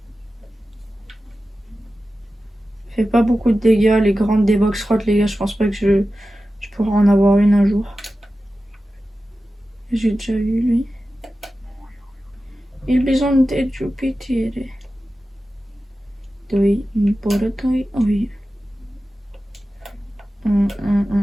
Fait pas beaucoup de dégâts, les grandes des box Rat, les gars, je pense pas que je pourrai en avoir une un jour. J'ai déjà eu lui. Il bisogno di Jupiter. Doi, importoi, oui.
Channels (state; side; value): normal; both; correlation 0.94